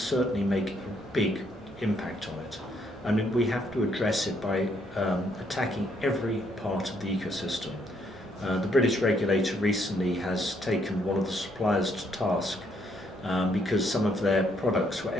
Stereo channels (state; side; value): normal; both; correlation 0.71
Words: make a big impact on it. And we have to address it by attacking every part of the ecosystem. The British regulator recently has taken one of the suppliers to task because some of their products were